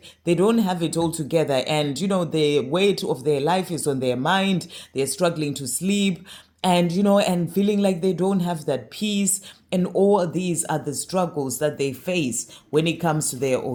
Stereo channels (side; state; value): both; identical; correlation 1.00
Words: they don't have it all together. And, the weight of their life is on their mind. They're struggling to sleep and and feeling like they don't have that peace. And all these are the struggles that they face when it comes to their